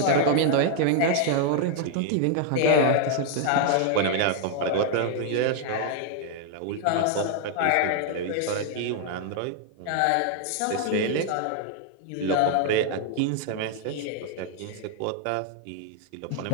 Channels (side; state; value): both; different; correlation 0.00